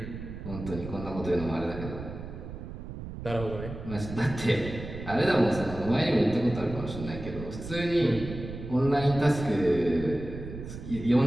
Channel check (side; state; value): right; noise; rumble, 10 dB below the sound